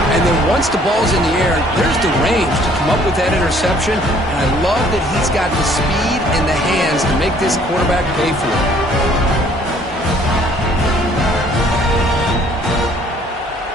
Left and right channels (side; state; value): both; normal; correlation 0.59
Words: and then once the ball's in the air, there's the range to come up with that interception, and I love that he's got the speed and the hands to make this quarterback pay for it.